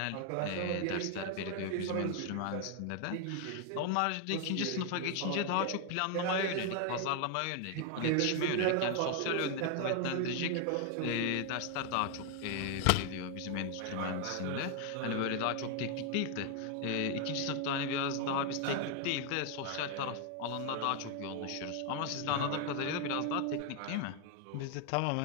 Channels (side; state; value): both; different; correlation 0.00